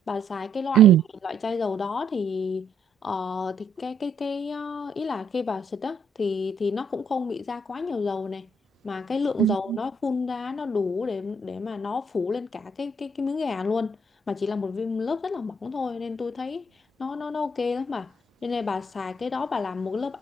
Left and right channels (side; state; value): both; normal; correlation 0.70